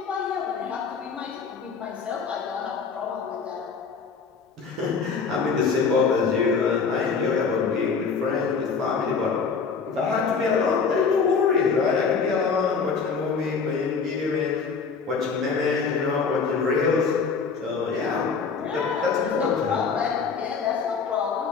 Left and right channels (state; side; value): quieter; right; 5.4 dB